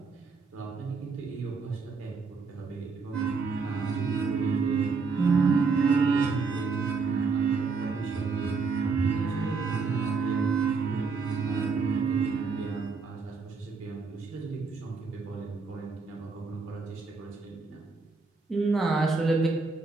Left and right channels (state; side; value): quieter; left; 4.6 dB